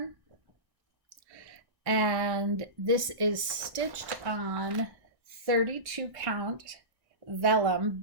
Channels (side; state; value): left; late; 1.1 ms